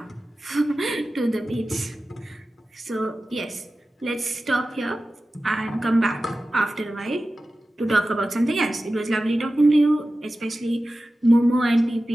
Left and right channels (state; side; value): normal; both; correlation 0.95